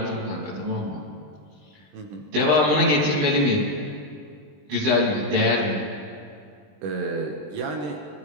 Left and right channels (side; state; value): left; late; 20 ms